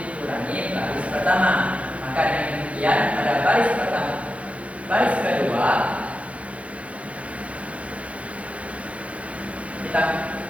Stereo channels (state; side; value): late; left; 0.064 ms